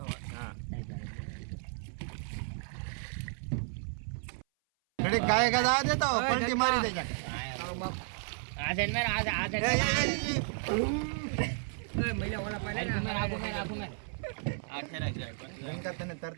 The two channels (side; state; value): left; silent; 56 dB below the other